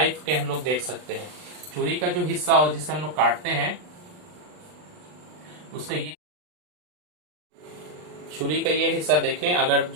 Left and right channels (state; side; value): late; left; 39 ms